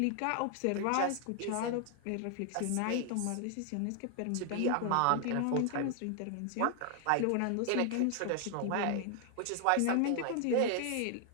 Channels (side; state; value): both; different; correlation 0.00